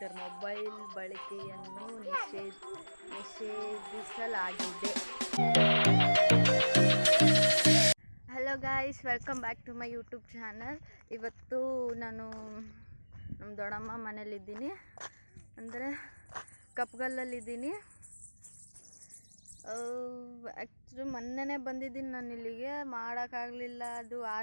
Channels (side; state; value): both; inverted; correlation -1.00